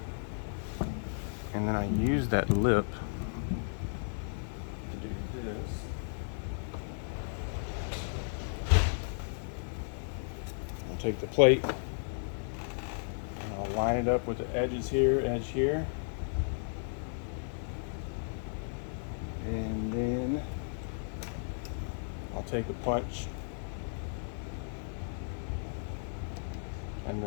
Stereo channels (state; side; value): silent; right; digital silence